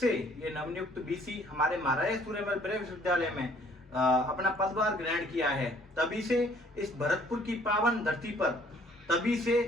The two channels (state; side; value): normal; both; correlation 0.59